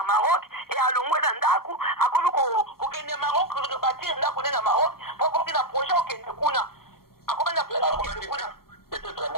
Maroc et alongwe na ndaku akome ko kende Maroc ko bâtir ndaku na Maroc pour kina projet okende kuna akome na projet kuna. Peut-être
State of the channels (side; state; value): right; late; 0.93 ms